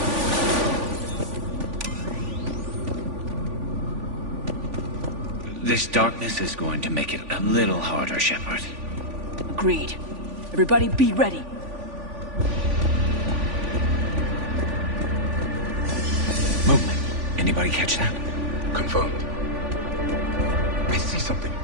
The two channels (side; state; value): left; late; 3.5 ms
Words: This darkness is going to make it a little harder, Shepard. Agreed. Everybody be ready. Movement. Anybody catch that? Confirmed. I see something.